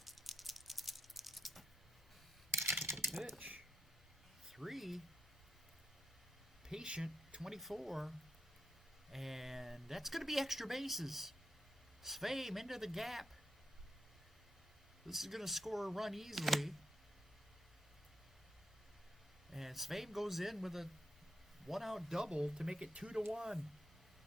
Pitch. 3. Patient, 24. And that's going to be extra bases. Sveum into the gap. This is going to score a run easily. And Sveum goes in with a 1-out double to make it 2-1.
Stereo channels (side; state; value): both; normal; correlation 0.82